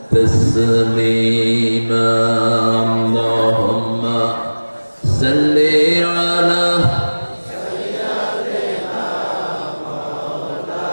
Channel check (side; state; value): both; inverted; correlation -1.00